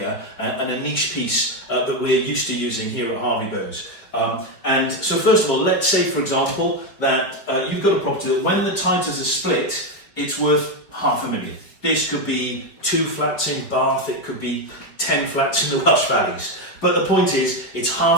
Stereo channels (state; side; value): late; right; 4.8 ms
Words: and a niche piece that we're used to using here at Harvey Bows. And so first of all, let's say, for example, that you've got a property that when the titles are split, it's worth £500,000. This could be 2 flats in Bath, it could be 10 flats in the Welsh Valleys. But the point is, it's